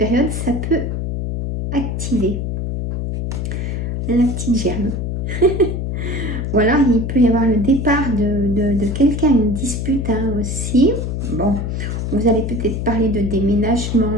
ça peut activer la petite germe. Ou alors, il peut y avoir le départ de quelqu'un, une dispute hein, aussi. Bon, vous allez peut-être parler de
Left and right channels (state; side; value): noise; left; hum, 2 dB below the sound